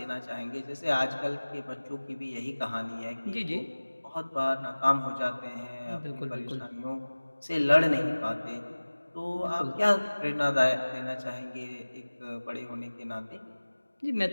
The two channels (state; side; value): inverted; both; correlation -1.00